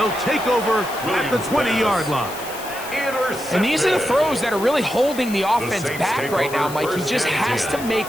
take over at the 20-yard line. And these are the throws that are really holding the offense back right now, Mike. He just has to make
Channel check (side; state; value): left; noise; hiss, 14 dB below the sound